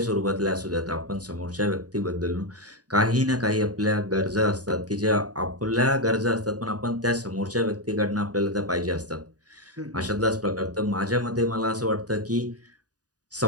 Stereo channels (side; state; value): left; late; 0.68 ms